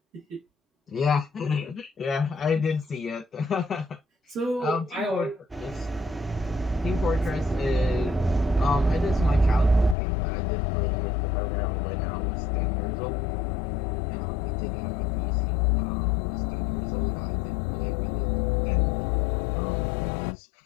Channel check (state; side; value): drops out; right; at 10.0 s